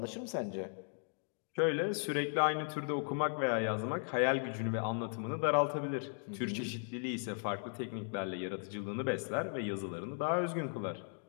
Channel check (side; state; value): right; silent; 53 dB below the other